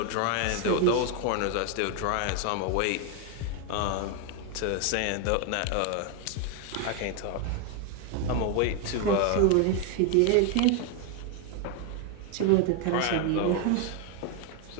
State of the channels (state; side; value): different; both; correlation 0.01